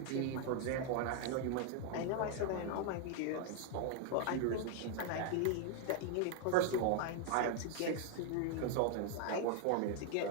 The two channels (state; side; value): different; both; correlation 0.00